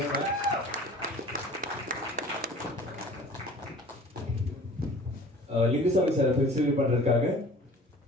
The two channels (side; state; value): both; normal; correlation 0.45